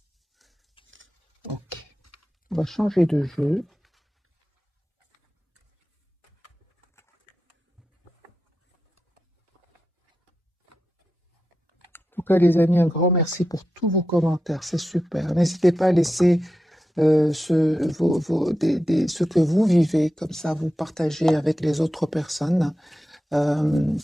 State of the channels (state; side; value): normal; both; correlation 0.90